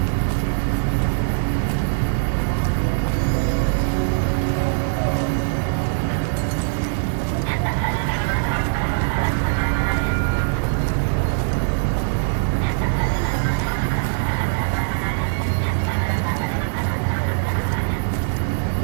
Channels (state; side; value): silent; left; 65 dB below the other